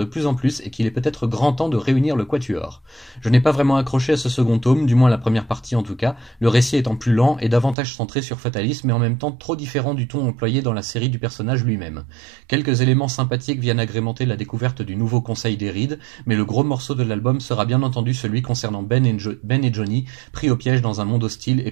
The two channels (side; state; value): left; drops out; at 7.8 s